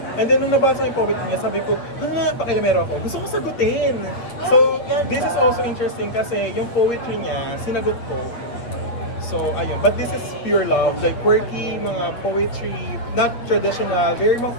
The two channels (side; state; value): right; late; 8.3 ms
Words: And then, nung nabasa ko yung poetry niya, sabi ko, pakilamero ako. Gusto ko sagutin. So, this is also interesting kasi yung poetry niya, sinagot ko. So, ayun. But this is pure love. Like, quirky, mga poetry, not traditional. Very mga